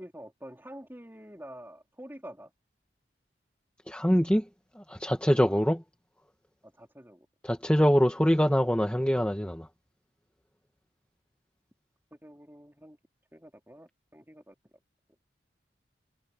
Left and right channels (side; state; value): both; normal; correlation 0.98